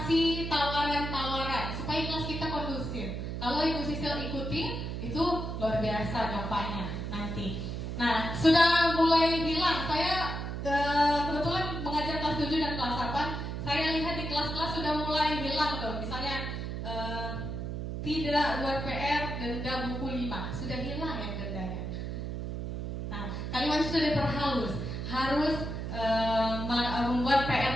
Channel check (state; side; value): noise; right; hum, 4 dB below the sound